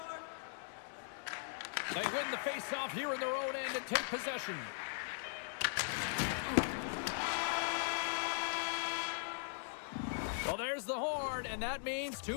They win the face-off here in their own end and take possession. Well, there's the horn, and that means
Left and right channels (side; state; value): right; silent; digital silence